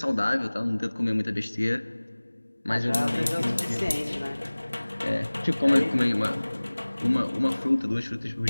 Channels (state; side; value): inverted; both; correlation -1.00